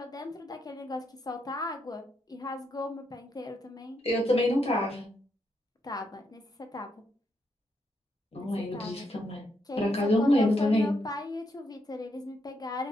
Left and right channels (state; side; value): normal; both; correlation 0.79